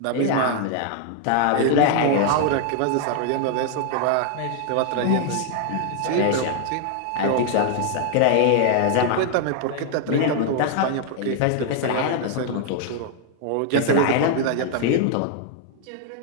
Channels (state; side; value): different; both; correlation 0.00